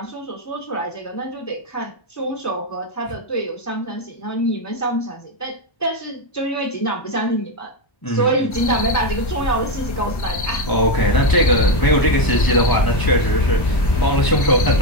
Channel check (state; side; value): late; right; 1.3 ms